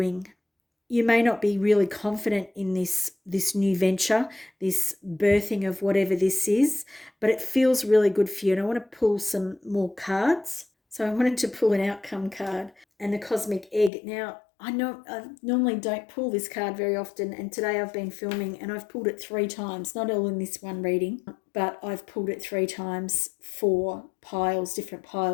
you may not be really confident in this new venture, this birthing of whatever this is, but it feels really good for you. And I want to pull some more cards. So I wanted to pull an outcome card and the cosmic egg. Now, I know I normally don't pull this card very often, and today I've been filming and I've pulled it 3 times, not all in this one reading, but I've pulled it 3 times for piles, different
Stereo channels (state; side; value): drops out; right; at 13.9 s